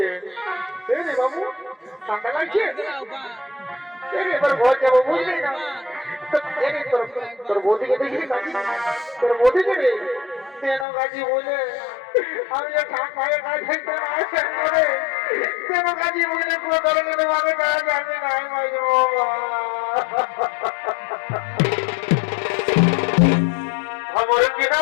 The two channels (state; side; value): drops out; right; at 10.9 s